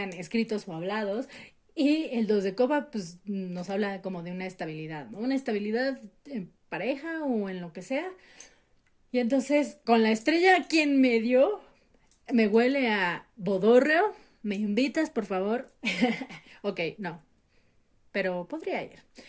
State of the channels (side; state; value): both; identical; correlation 1.00